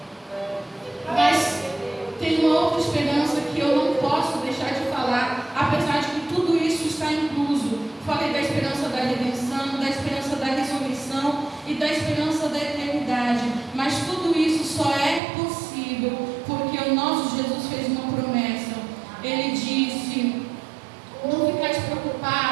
Mas tem uma outra esperança que eu não posso deixar de falar, apesar de que tudo isso está incluso. Falei da esperança da redenção, da esperança da ressurreição e da esperança da eternidade. Mas tudo isso só é possível porque o nosso Jesus fez uma promessa. Ele disse: não ficais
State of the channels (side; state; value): left; drops out; at 15.2 s